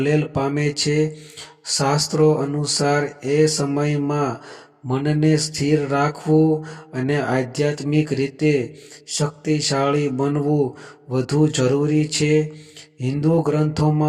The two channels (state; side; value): identical; both; correlation 1.00